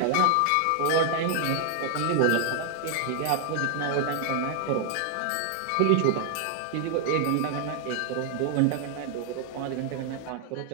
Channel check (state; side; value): different; both; correlation 0.00